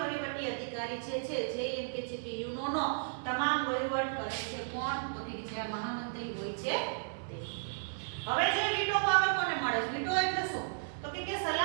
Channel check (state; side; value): silent; left; digital silence